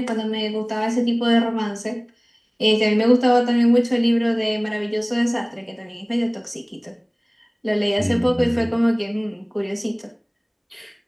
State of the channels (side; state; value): both; identical; correlation 1.00